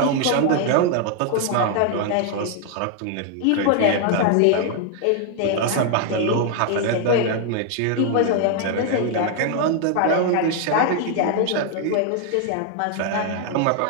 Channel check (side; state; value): both; different; correlation 0.00